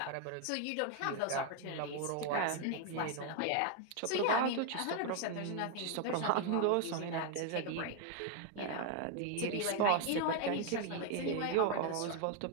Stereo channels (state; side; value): different; both; correlation 0.01